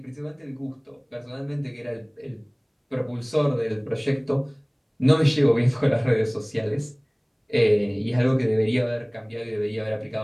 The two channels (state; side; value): identical; both; correlation 1.00